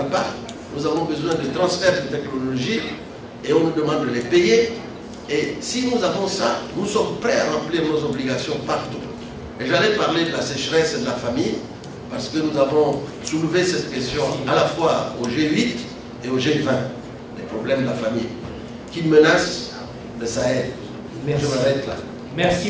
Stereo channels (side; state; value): both; identical; correlation 1.00